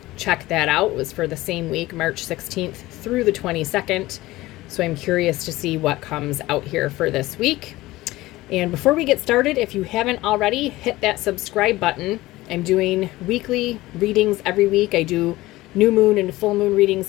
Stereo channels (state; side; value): quieter; right; 18.2 dB